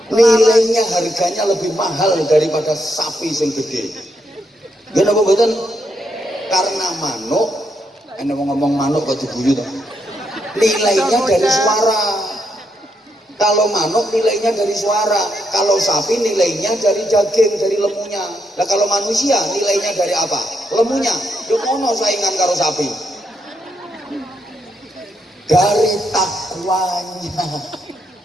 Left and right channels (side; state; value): both; normal; correlation 0.79